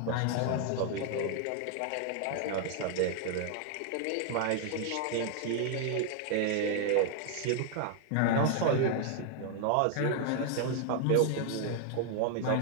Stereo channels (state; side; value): different; both; correlation 0.00